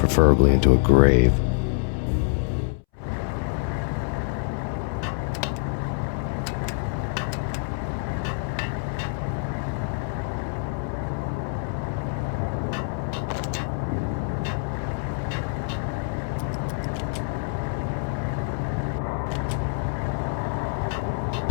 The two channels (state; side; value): silent; right; 61 dB below the other